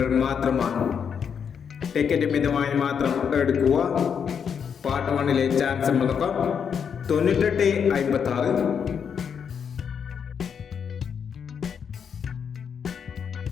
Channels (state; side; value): quieter; right; 7.1 dB